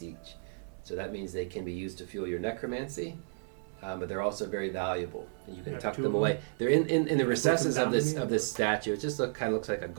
each, so that means they can be used to fuel your necromancy. But they're also very valuable, and you can Have tuck 2 them of away. They're in the Put them recesses down of to this me? of this statue. It just kind of looks like a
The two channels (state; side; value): silent; left; 56 dB below the other